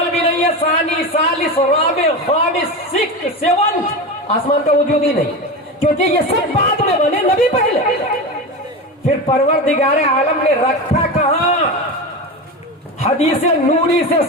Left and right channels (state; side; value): normal; both; correlation 0.23